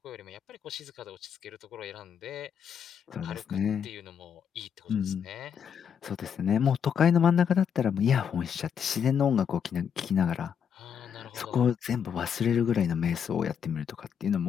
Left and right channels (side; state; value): right; quieter; 7.7 dB